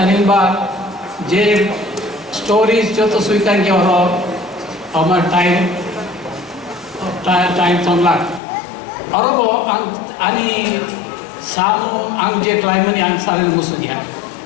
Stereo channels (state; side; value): drops out; right; at 8.4 s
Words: बार जे स्टोरीज जो तो स्वीकार किया और हमार टाइम संलाक और वो आनी सामु आंग जे क्लाइमनी आंग सारे मुसुदिया